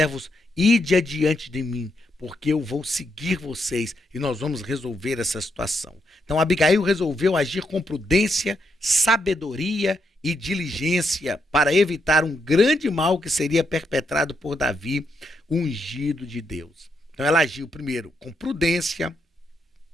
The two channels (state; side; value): normal; both; correlation 0.79